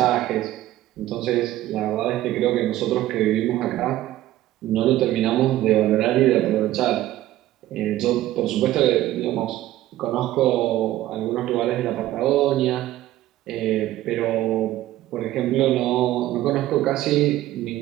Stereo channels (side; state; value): left; quieter; 14.8 dB